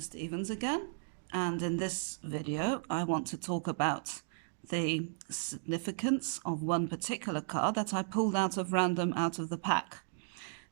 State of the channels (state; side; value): silent; left; digital silence